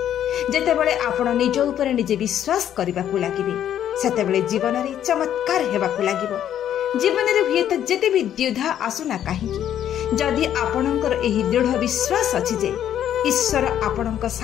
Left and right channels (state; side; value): quieter; right; 10.5 dB